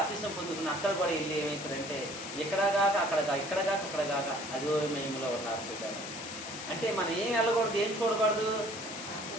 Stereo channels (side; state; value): left; noise; hiss, 9 dB below the sound